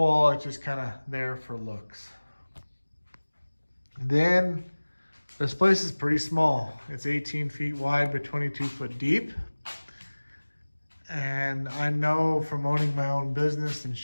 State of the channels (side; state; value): both; inverted; correlation -1.00